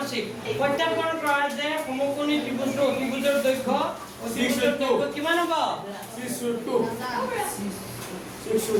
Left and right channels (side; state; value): both; identical; correlation 1.00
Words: প্ৰত্যাপন কৰা যে সমকোণী ত্ৰিভুজৰ অতিভুজৰ দৈৰ্ঘ্য অতিভুজৰ দৈৰ্ঘ্য কিমান হ'ব 602